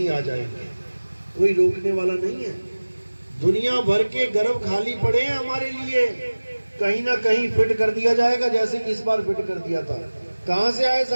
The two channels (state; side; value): inverted; both; correlation -1.00